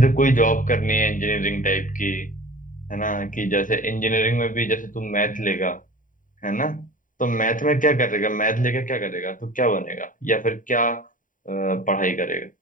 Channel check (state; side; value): late; right; 0.39 ms